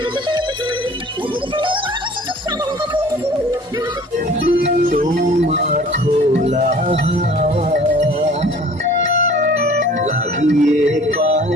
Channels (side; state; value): both; normal; correlation 0.49